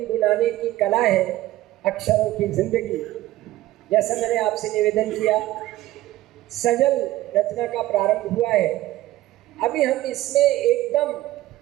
की कला है अक्षरों की जिंदगी। जैसा मैंने आपसे निवेदन किया, सजल रचना का प्रारंभ हुआ है। अभी हम इसमें एकदम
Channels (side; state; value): left; quieter; 15.8 dB